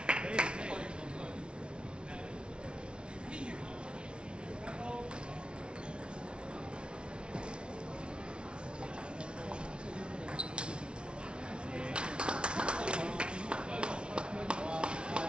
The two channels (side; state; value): left; late; 0.057 ms